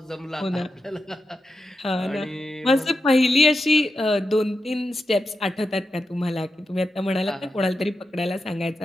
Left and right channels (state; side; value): normal; both; correlation 0.89